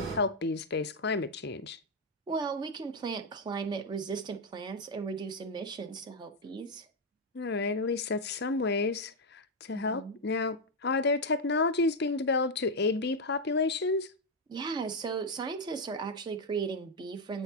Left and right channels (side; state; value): both; normal; correlation 0.03